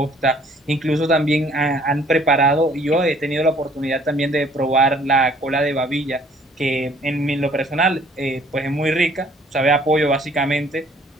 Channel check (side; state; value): both; normal; correlation 0.58